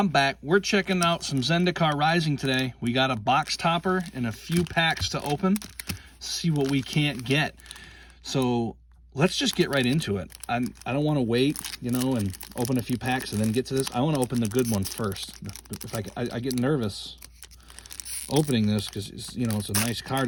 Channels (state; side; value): identical; both; correlation 1.00